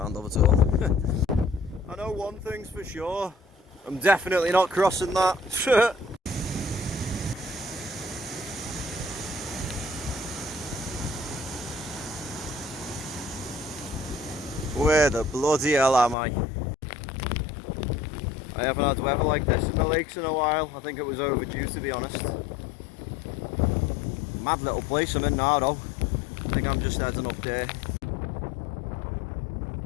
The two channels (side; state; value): right; drops out; at 16.2 s